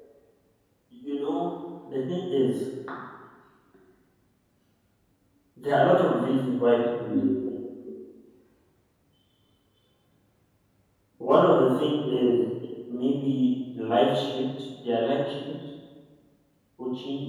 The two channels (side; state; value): both; identical; correlation 1.00